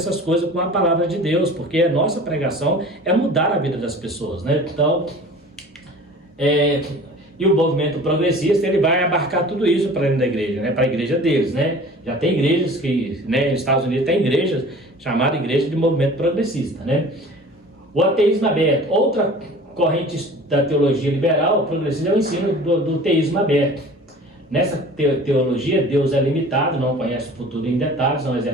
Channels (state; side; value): normal; both; correlation 0.43